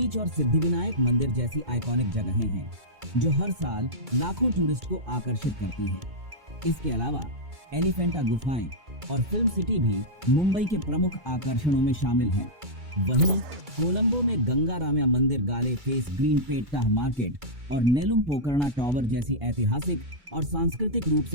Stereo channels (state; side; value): late; left; 2.3 ms